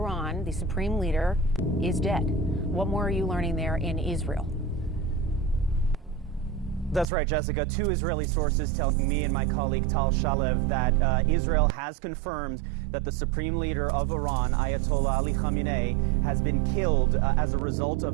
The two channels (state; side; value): drops out; left; at 7.1 s